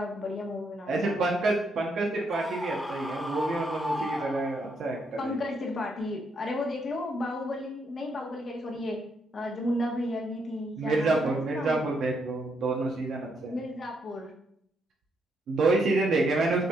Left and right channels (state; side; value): normal; both; correlation 0.76